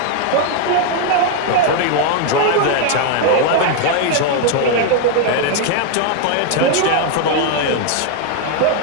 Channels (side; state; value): both; different; correlation 0.00